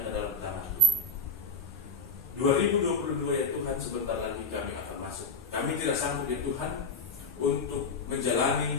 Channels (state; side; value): quieter; right; 3.4 dB